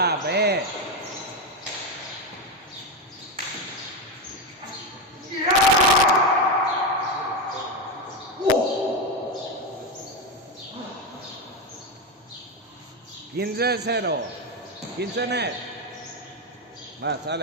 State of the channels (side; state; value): both; normal; correlation 0.12